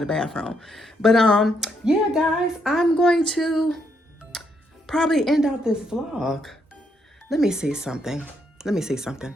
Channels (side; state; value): both; normal; correlation 0.75